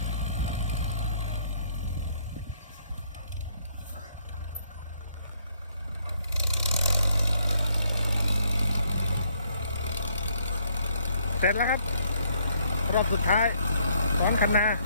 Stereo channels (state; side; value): inverted; both; correlation -0.69